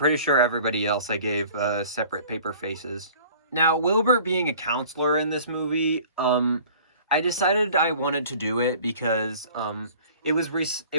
sure everybody else I gave separate paper faces. Now, Wilbert being a counselor in this movie, I decided I wanted to do it because it was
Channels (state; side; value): inverted; both; correlation -0.49